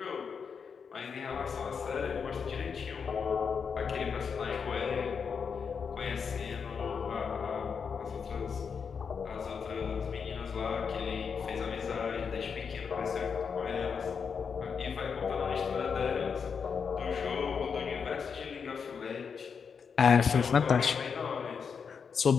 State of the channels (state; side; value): quieter; right; 6.2 dB